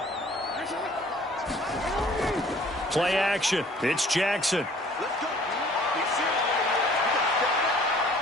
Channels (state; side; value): normal; both; correlation 0.54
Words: Play action. It's Jackson.